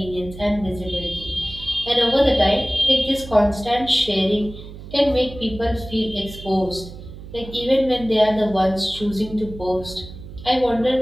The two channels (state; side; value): noise; right; hum, 14 dB below the sound